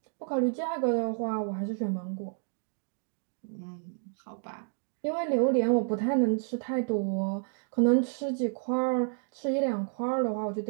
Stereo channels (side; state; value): left; silent; 58 dB below the other